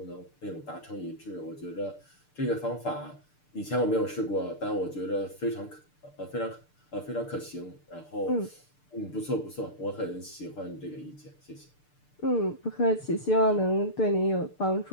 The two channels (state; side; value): late; right; 6.7 ms